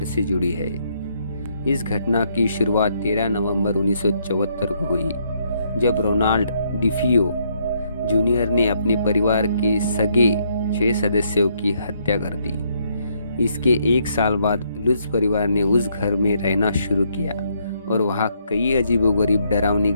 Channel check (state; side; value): inverted; both; correlation -0.72